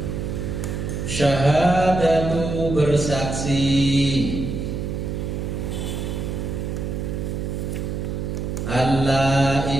syahadatu bersaksi, alla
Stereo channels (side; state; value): right; noise; hum, 3 dB below the sound